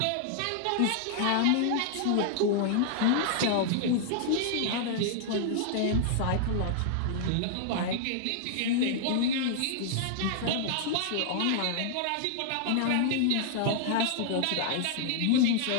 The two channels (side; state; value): both; different; correlation -0.01